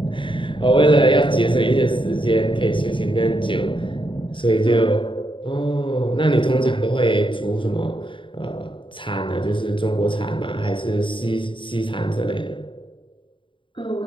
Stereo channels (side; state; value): right; late; 0.24 ms